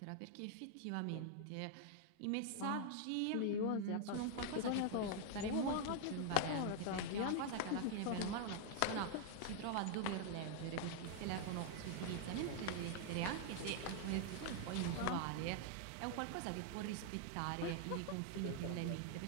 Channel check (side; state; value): both; different; correlation 0.00